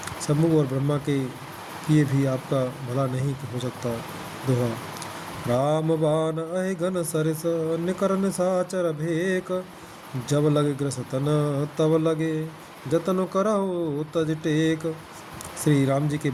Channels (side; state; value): both; identical; correlation 1.00